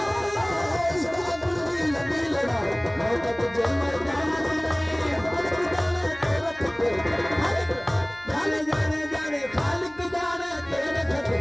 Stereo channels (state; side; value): noise; left; hum, 26 dB below the sound